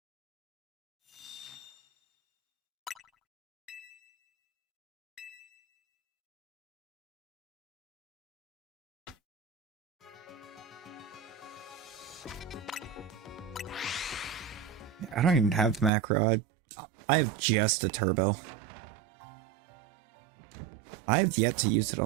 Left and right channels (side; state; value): left; drops out; at 15.9 s